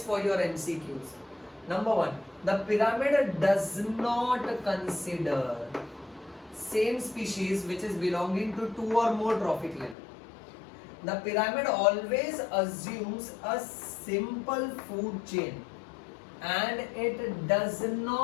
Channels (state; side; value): drops out; right; at 10.0 s